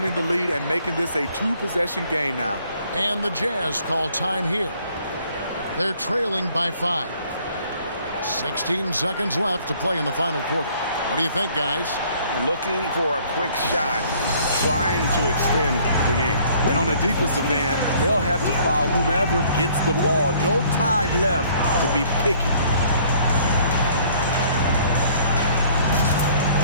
the lead and making this a 2-possession game now. And the Jazz call time here. They're trailing by 5. 16 seconds left to play in the final quarter. What do you think, guys? Looking for a quick shot, trying to extend the game. And on the defensive end, they'll have to foul whomever gets the ball. No time left to be picky.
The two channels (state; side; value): inverted; both; correlation -0.59